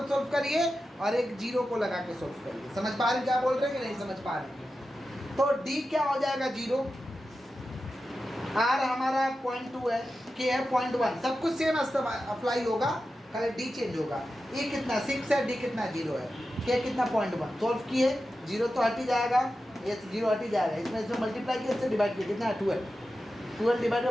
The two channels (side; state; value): both; normal; correlation 0.92